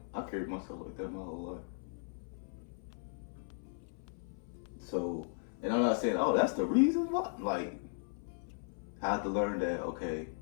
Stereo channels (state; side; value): silent; right; 53 dB below the other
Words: I carried myself like that my whole life. So, and I'm not saying, oh, that's the reason why. Like, I have to learn that, okay,